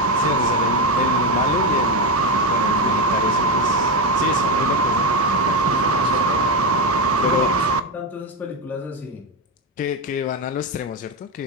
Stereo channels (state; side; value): normal; both; correlation 0.12